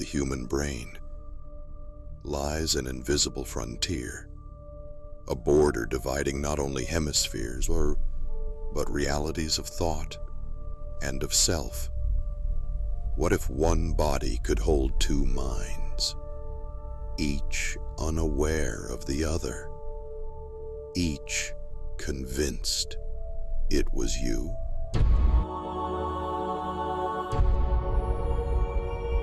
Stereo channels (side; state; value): both; identical; correlation 1.00